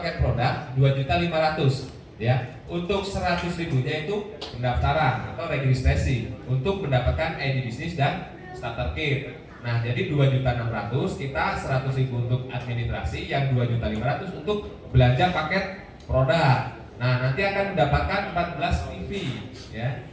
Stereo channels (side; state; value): both; identical; correlation 1.00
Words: produk 2.500.000 ya. Untuk 100.000-nya itu pendaftaran atau registrasi untuk mendapatkan ID bisnis dan starter kit. Nah, jadi 2.600.000, kita 100.000 untuk administrasi, yang 2.500.000 untuk belanja paket produk. Nah, nanti akan mendapatkan 14 PV ya.